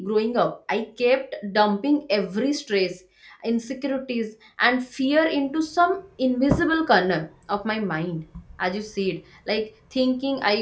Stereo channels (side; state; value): both; identical; correlation 1.00